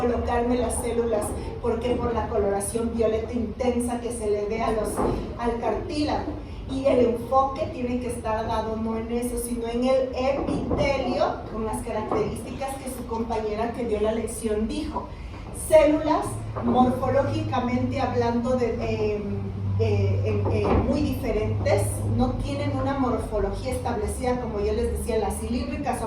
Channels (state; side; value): identical; both; correlation 1.00